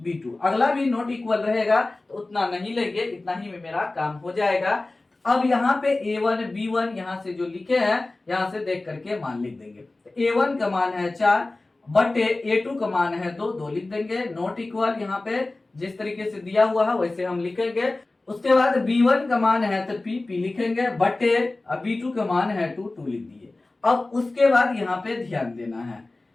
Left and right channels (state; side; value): quieter; right; 3.1 dB